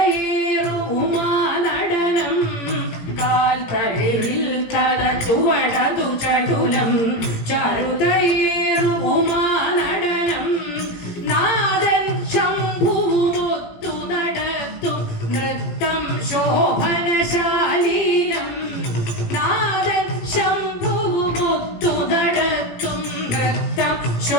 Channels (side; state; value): right; late; 18 ms